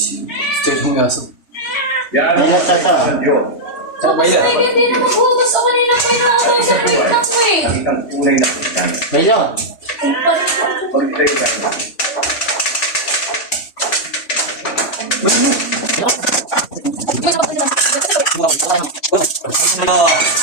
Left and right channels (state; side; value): late; right; 3.1 ms